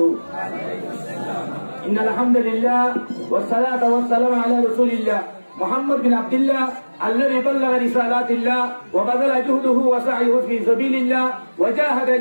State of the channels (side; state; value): both; inverted; correlation -1.00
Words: ইন্নাল হামদুলিল্লাহ ওয়াস সালাতু ওয়াস সালামু আলা রাসূলিল্লাহ محمد بن عبد الله الذي بلغ رسالات الله وبذل جهده وسعيه في سبيل الله وجاهد